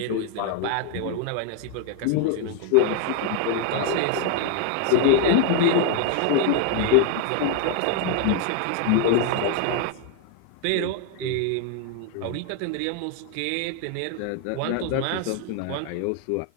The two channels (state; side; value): different; both; correlation 0.01